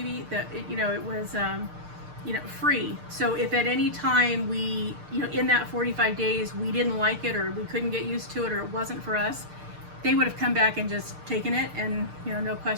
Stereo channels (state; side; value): late; left; 6.6 ms